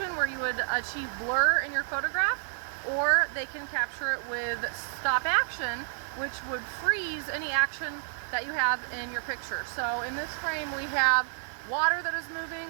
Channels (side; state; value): left; silent; 58 dB below the other